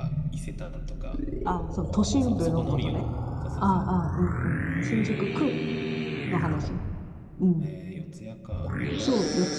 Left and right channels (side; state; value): both; identical; correlation 1.00